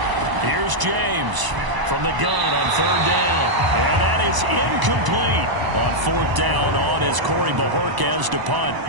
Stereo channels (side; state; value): left; late; 1.0 ms